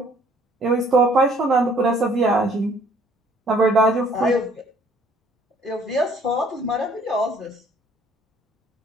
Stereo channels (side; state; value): both; normal; correlation 0.59